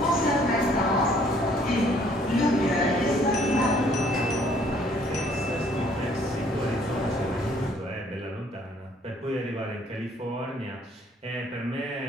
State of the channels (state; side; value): normal; both; correlation 0.61